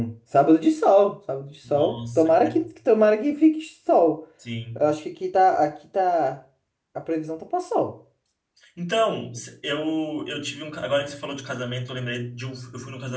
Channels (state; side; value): identical; both; correlation 1.00